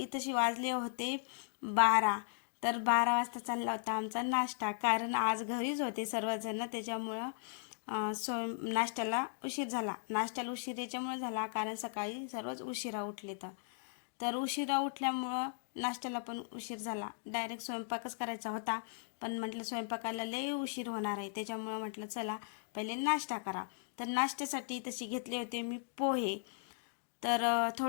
वाजले होते 12. तर 12 वाजता चालला होता आमचा नाश्ता, कारण आज घरीच होते सर्वजण. त्याच्यामुळं नाश्त्याला उशीर झाला. नाश्त्याला उशीर याच्यामुळे झाला कारण सकाळी सर्वच उशिरा उठले. तर उशिरा उठल्यामुळं नाश्त्याला पण उशीर झाला. डायरेक्ट स्वयंपाकच करायचा होता, पण म्हटलं स्वयंपाकाला लई उशीर होणार आहे, त्याच्यामुळं म्हटलं चला पहिले नाश्ता करा. तर नाश्त्यासाठी तशी घेतले होते मी पोहे. तर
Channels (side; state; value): right; silent; digital silence